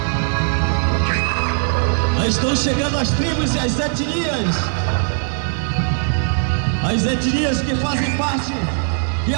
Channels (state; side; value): silent; left; 57 dB below the other